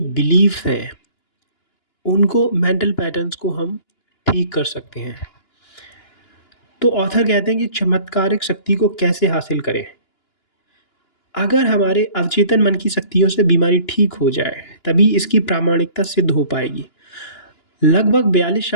हैं, उनको मेंटल पैटर्न्स को हम ठीक कर सकते हैं। तो ऑथर कहते हैं कि चमत्कारिक शक्ति को कैसे हासिल करें? अगर हमारे अवचेतन मन की शक्तियों से बीमारी ठीक हो जाए, तभी इसकी प्रामाणिकता सिद्ध हो पाएगी। लगभग 42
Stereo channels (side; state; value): right; late; 2.9 ms